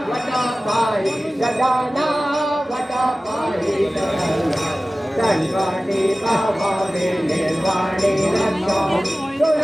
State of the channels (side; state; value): both; normal; correlation 0.97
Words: वटपाई गजाना वटपाई संकटी पावने निर्वाणे रक्षा